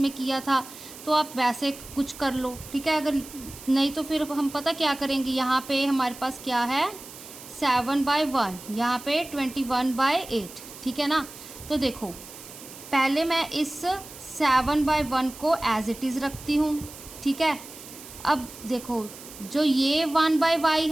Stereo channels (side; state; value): right; noise; hiss, 16 dB below the sound